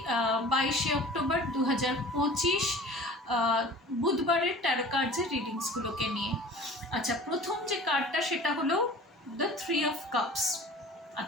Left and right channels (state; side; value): normal; both; correlation 0.43